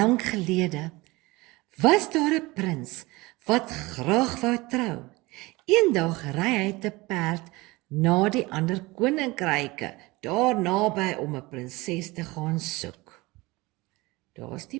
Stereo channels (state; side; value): quieter; left; 22.2 dB